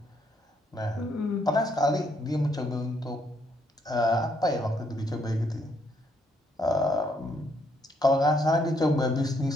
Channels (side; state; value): both; normal; correlation 0.72